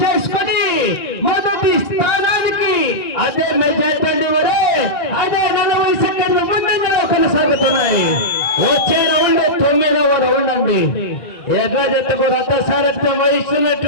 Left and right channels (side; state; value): right; late; 2.4 ms